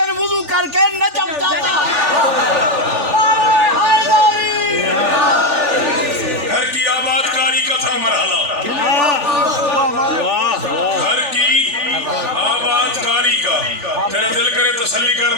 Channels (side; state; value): left; late; 3.4 ms